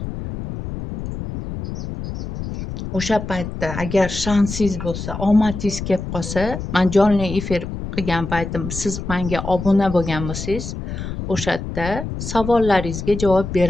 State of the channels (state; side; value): noise; left; rumble, 7 dB below the sound